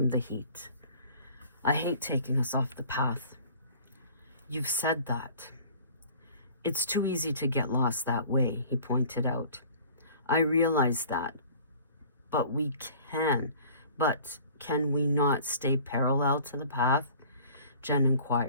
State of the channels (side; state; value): both; inverted; correlation -0.48